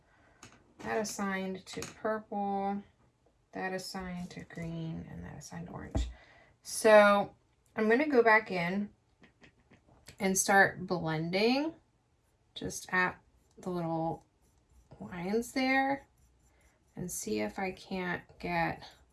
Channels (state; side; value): identical; both; correlation 1.00